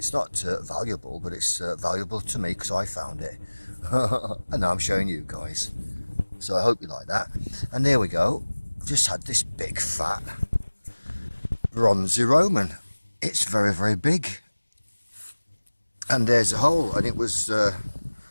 not valuable, but it's valuable to me because I found it. And now I'm showing you guys. So I hope you like that. And there we go. I've just had this big fat bronzy Roman. It's very, very big. And there's a hole, and it was let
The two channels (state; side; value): inverted; both; correlation -1.00